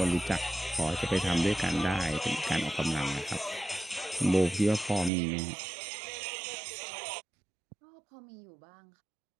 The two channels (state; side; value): drops out; left; at 5.1 s